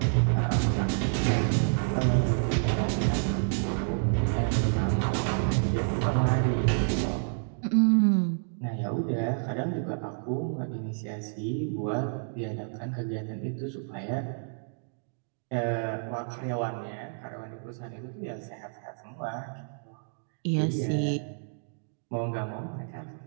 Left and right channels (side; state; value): left; silent; digital silence